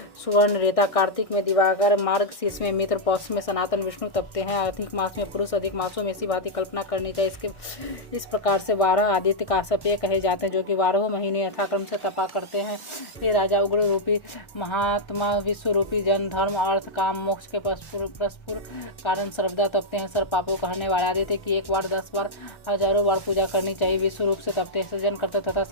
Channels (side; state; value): right; late; 1.1 ms